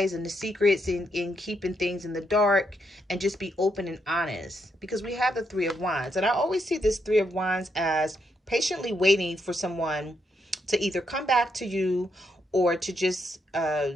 and the secrets, and keeping things in the dark, and just be open and honest. Because we have the Three of Wands. And I always see this Three of Wands as patiently waiting for someone to either come back to you, or to just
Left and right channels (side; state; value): both; normal; correlation 0.79